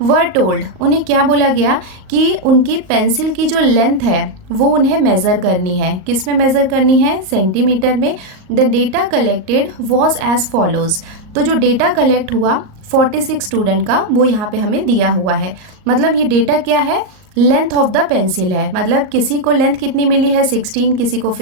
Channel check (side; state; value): left; late; 38 ms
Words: Were told, उन्हें क्या बोला गया कि उनकी पेंसिल की जो लेंथ है वो उन्हें मेज़र करनी है। किस में मेज़र करनी है, सेंटीमीटर में। The data collected was as follows. तो जो डेटा कलेक्ट हुआ 46 स्टूडेंट का वो यहाँ पे हमें दिया हुआ है। मतलब ये डेटा क्या है, लेंथ ऑफ द पेंसिल है। मतलब किसी को लेंथ कितनी मिली है 16, किसी को